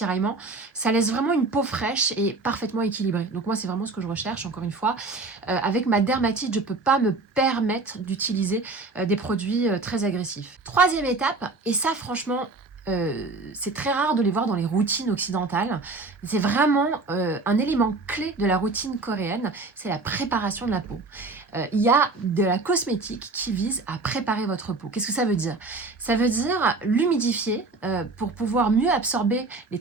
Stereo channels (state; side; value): quieter; left; 3.5 dB